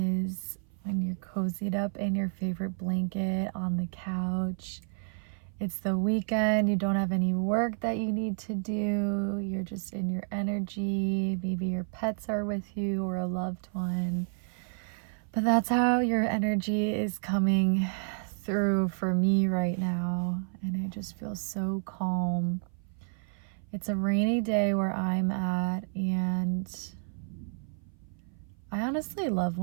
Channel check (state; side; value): silent; left; 56 dB below the other